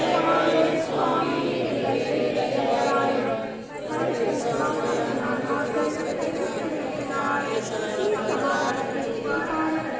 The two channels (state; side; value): identical; both; correlation 1.00